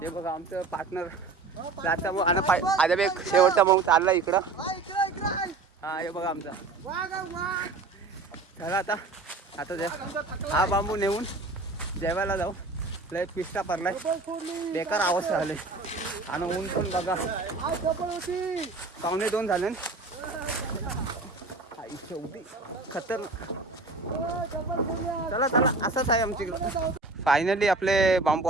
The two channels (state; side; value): quieter; left; 3.6 dB